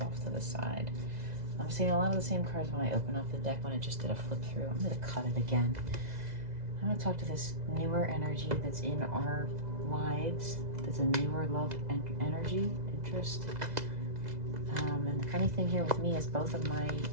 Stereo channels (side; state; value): left; late; 2.0 ms